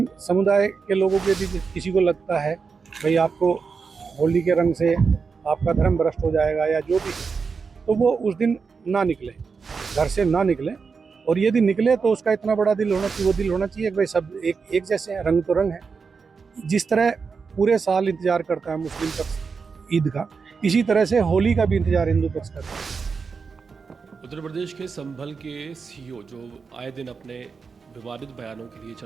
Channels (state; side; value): quieter; left; 5.2 dB